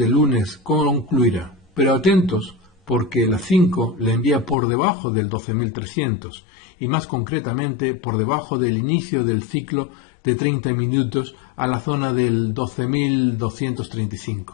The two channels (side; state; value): right; drops out; at 4.5 s